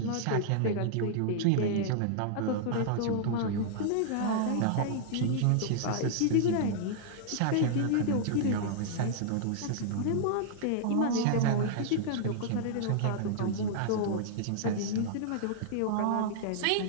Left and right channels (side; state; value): both; different; correlation -0.01